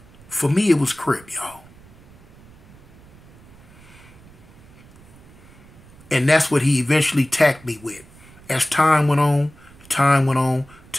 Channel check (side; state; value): right; noise; rumble, 23 dB below the sound